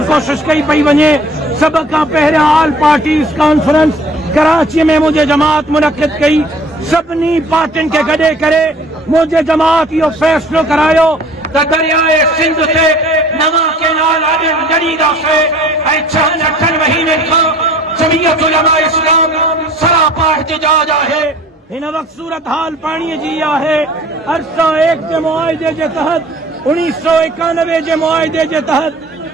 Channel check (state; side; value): normal; both; correlation 0.51